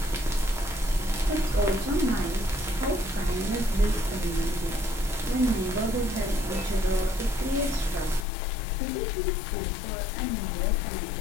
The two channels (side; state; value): right; drops out; at 8.2 s